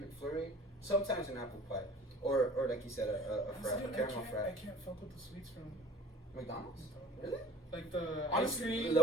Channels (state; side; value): normal; both; correlation 0.48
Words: McFlurry. Sometimes an apple pie, or like you said, a caramel frap. I can't fuck with the sweets from McDonald's. Really? like the Honestly, ice cream,